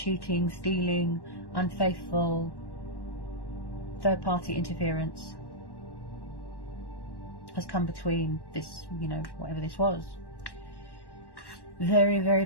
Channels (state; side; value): late; right; 1.1 ms